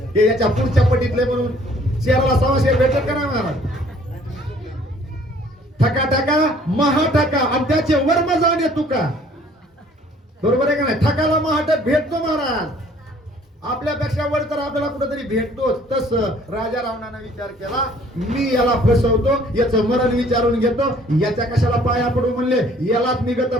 हे याच्या पुढच्या पटीतले म्हणून शेराला सवाशे भेटत का नाही महाराज. ठका ठका महाठका आणि त्याचे वर्म जाणे तुका बरोबर आहे का नाही. ठकाला महाटक भेटतो महाराज आपल्यापेक्षा वर तर आपल्याला कुठेतरी भेटतोच. तस राजा रावणाने विचार केला मी याला फसवतो याचं मरण विचारून घेतो याच्या कशाला पाया पडू म्हणले यालाच निगत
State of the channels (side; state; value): both; normal; correlation 0.57